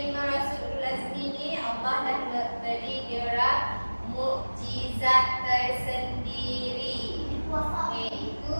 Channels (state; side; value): inverted; both; correlation -1.00